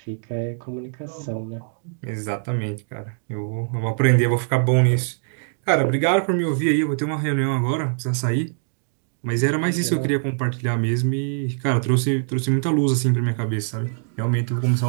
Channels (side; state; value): left; silent; digital silence